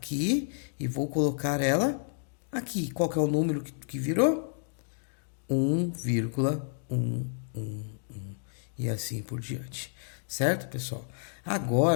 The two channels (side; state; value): right; silent; digital silence